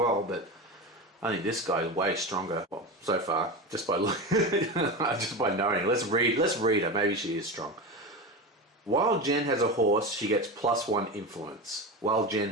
but I think this guy is way stronger. Well, so far, just by knowing. Let's read her. Maybe she is strong. While Jen has a horse, she gets +1 influence. While Jen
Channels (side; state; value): both; normal; correlation 0.23